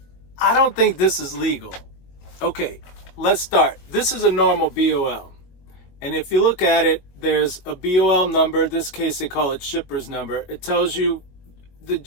I don't think this is legal. Okay, let's start. This is a normal BOL. And if you look at it, there's a BOL number. In this case, they call it shipper's number. It tells you the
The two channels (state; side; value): late; right; 22 ms